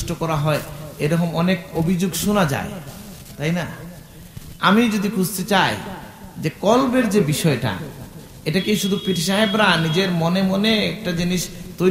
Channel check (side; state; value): both; identical; correlation 1.00